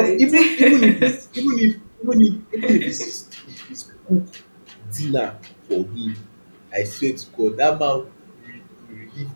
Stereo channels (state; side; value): inverted; both; correlation -1.00